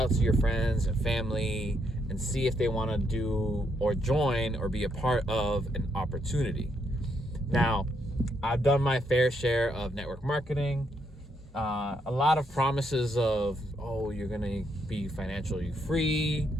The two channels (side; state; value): both; normal; correlation 0.76